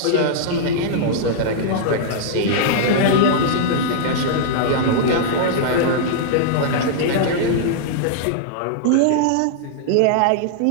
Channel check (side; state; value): both; different; correlation -0.01